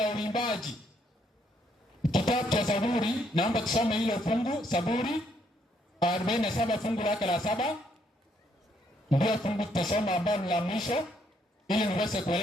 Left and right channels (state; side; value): normal; both; correlation 0.71